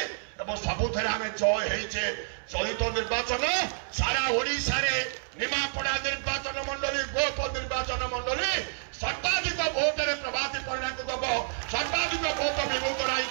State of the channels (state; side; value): silent; left; 59 dB below the other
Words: सबुथ आम जय होइचे चलित निर्वाचन सारा ओडिशा रे निमापड़ा निर्वाचन मंडली गोप निर्वाचन मंडली सर्वाधिक भोट रे प्रभाती परिणा को दब सर्वाधिक भोट विभूत राय